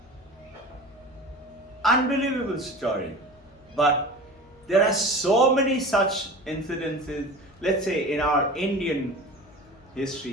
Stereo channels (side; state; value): left; noise; hum, 28 dB below the sound